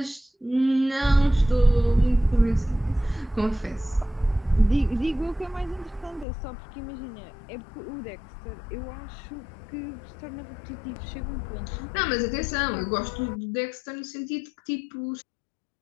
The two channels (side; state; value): right; drops out; at 6.2 s